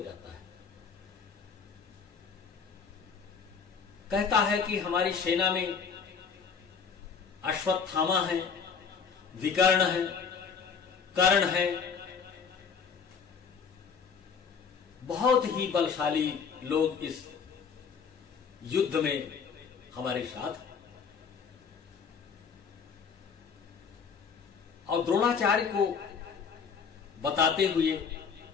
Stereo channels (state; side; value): quieter; right; 6.1 dB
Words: है। कहता है कि हमारी सेना में अश्वत्थामा है, विकर्ण है, कर्ण है, बहुत ही बलशाली लोग इस युद्ध में हमारे साथ हैं। और द्रोणाचार्य को बताते हुए